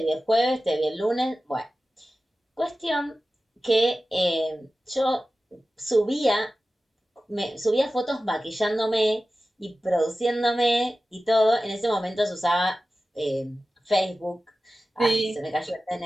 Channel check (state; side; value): normal; both; correlation 0.95